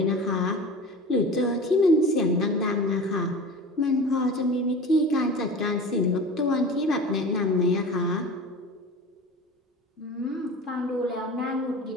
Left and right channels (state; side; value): normal; both; correlation 0.35